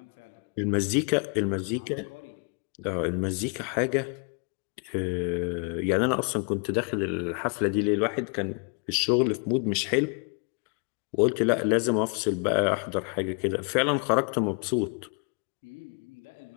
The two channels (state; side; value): quieter; right; 39.0 dB